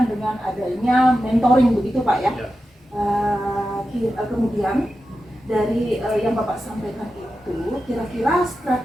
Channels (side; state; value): both; normal; correlation 0.91